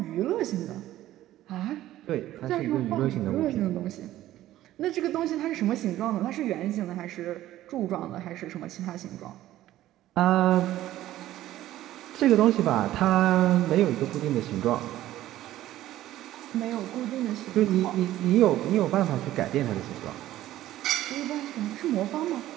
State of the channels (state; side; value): quieter; left; 14.2 dB